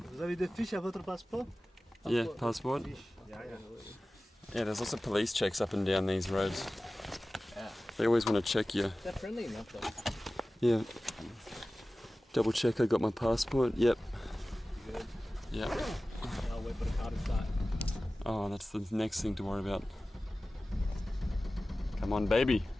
Vous avez des fiches à votre passeport? Yeah, passport. Yeah. Yeah, there's lots of police checks up and down these roads. Yeah. They always want to check you. They're friendly enough though. Yeah. Double check I got my passport. Yep. You good? Yep. I'll wait for the car to start. Oh, that's the next thing to worry about. Come on, baby.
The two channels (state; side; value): normal; both; correlation 0.97